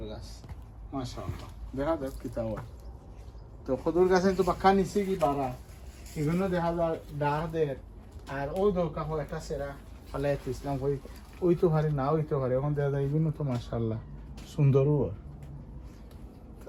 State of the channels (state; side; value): identical; both; correlation 1.00